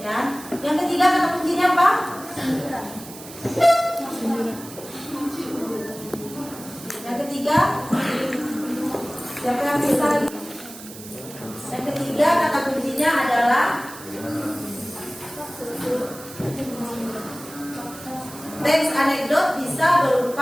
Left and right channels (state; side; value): noise; right; hiss, 15 dB below the sound